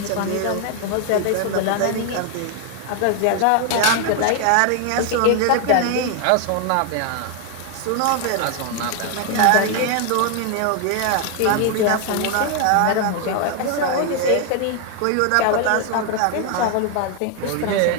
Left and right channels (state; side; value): different; both; correlation 0.00